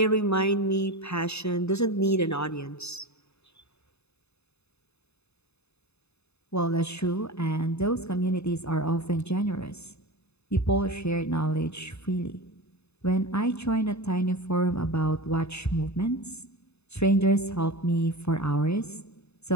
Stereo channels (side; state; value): right; late; 0.80 ms